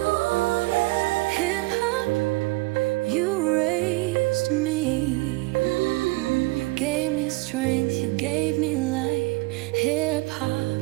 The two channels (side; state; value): left; quieter; 22.7 dB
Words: yeah. Hip hop, you raised me. You gave me strength, you gave me light. Hip